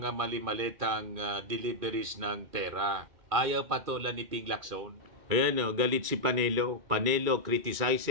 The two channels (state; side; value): late; left; 2.4 ms